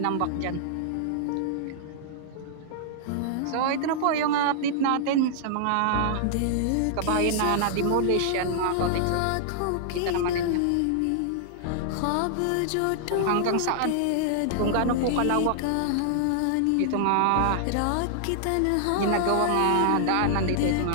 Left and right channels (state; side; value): different; both; correlation -0.01